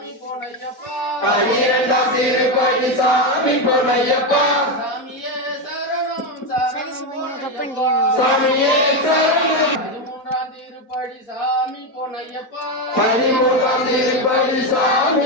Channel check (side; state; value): right; late; 4.1 ms